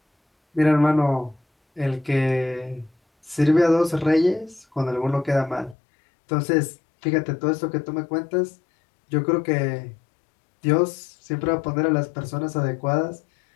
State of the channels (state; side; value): drops out; right; at 5.8 s